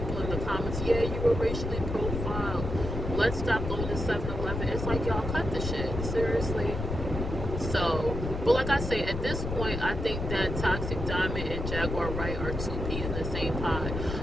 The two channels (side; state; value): left; noise; rumble, 4 dB below the sound